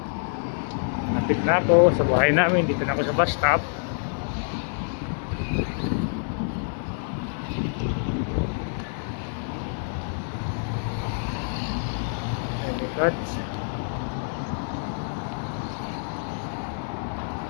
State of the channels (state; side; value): silent; right; digital silence